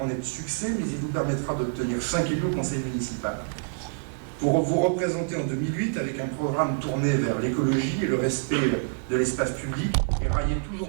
de succès, mais il vous permettra d'obtenir 5 élus au conseil municipal. Pour vous représenter en 2008 avec un programme tourné vers l'écologie et le respect de l'espace public et railler toujours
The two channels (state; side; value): silent; left; digital silence